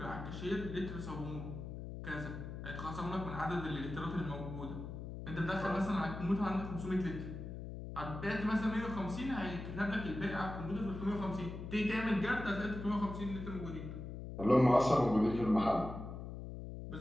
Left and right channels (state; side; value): noise; left; hum, 8 dB below the sound